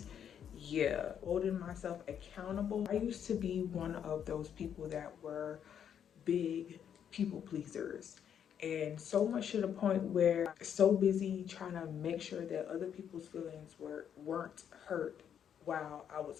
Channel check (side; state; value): right; quieter; 8.7 dB